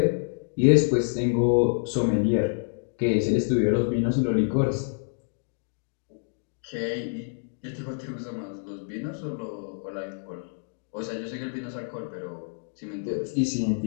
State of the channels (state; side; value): silent; right; digital silence